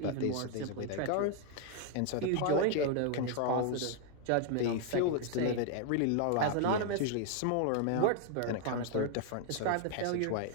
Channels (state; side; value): different; both; correlation 0.00